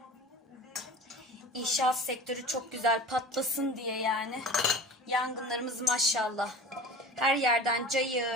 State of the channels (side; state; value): both; normal; correlation 0.37